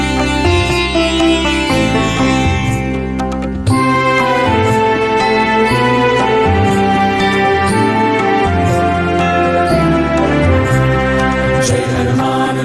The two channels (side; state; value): both; identical; correlation 1.00